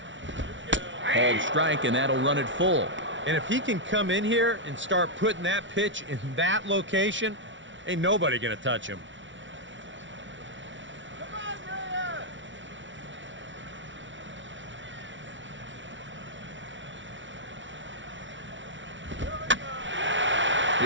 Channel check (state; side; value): late; left; 0.55 ms